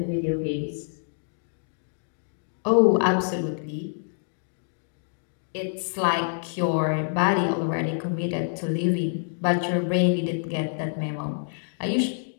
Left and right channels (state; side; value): silent; right; digital silence